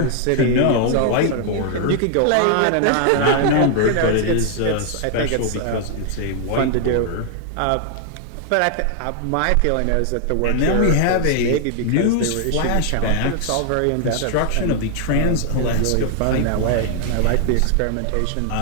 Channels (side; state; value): both; different; correlation 0.00